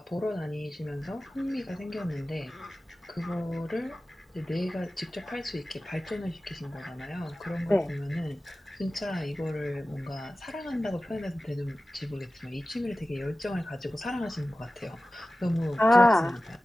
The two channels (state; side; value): normal; both; correlation 0.96